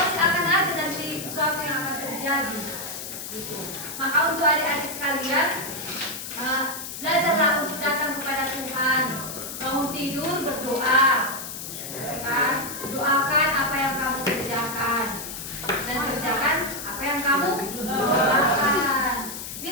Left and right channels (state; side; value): noise; left; hiss, 8 dB below the sound